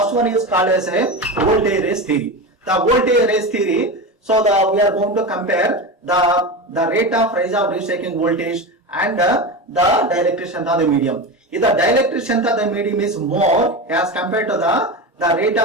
one is called as a voltage raise theory. The voltage raise theory. So we are going to compare the rate of rise of reshaping voltage and the dielectric strength of the medium. If the dielectric strength of the medium is more as compared to the rate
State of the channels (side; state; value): both; normal; correlation 0.23